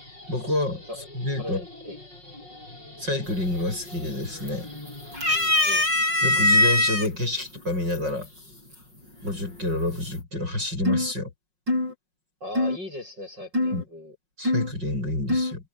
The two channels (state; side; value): late; left; 5.5 ms